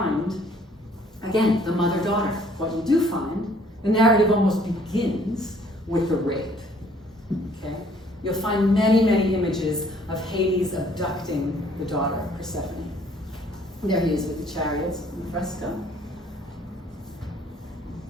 again, the mother-daughter. What you do find, the narrative almost begins with the rape, okay? You'll find many, many images of Hades abducting the daughter, Persephone. There he is with the chariots in the fresco.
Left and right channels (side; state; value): both; normal; correlation 0.60